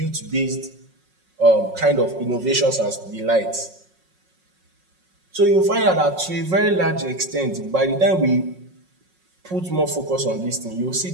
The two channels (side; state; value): left; late; 5.5 ms